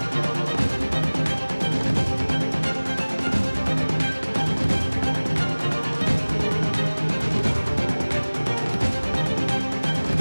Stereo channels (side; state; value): both; inverted; correlation -1.00